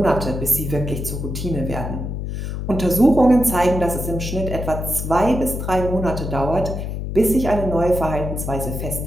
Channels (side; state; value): left; noise; hum, 5 dB below the sound